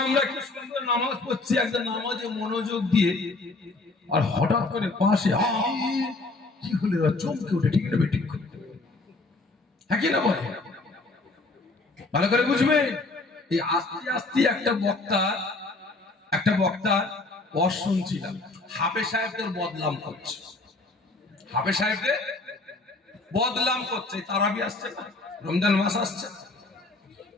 আমরা কি সুন্দর নামাজ পড়ছি, একটা নামাজে মনোযোগ দিয়ে, আর হঠাৎ করে পাশে কি হলে চমকে উঠে, ঠিক না বেঠিক? হ্যাঁ কি না বলে? ভালো করে বুঝবে। এই আস্তে আস্তে একটা বক্তা ওয়াজ শুনছিলাম, হাফেজ সাহেবদের বদনাম করছে, হাফেজ সাহেবদের বদনাম করছে। তারাবি আসছে না, রমজান মাস আসছে,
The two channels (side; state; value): right; quieter; 3.3 dB